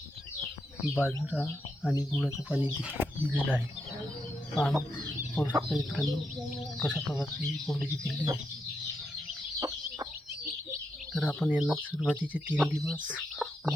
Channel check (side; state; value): both; normal; correlation 0.83